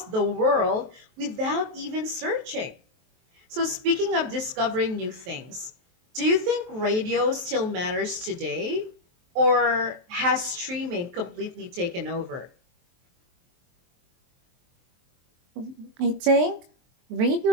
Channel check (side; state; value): left; late; 23 ms